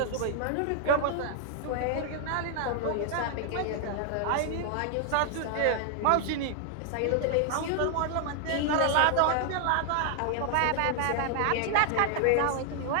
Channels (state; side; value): different; both; correlation 0.00